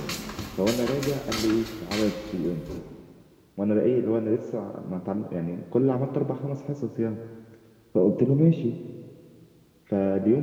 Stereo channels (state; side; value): identical; both; correlation 1.00